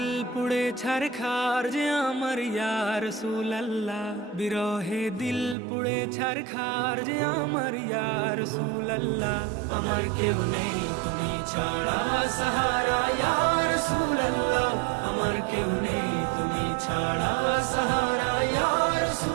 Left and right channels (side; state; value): left; drops out; at 5.6 s